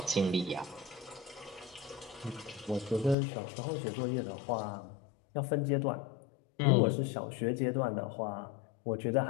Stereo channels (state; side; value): drops out; right; at 3.2 s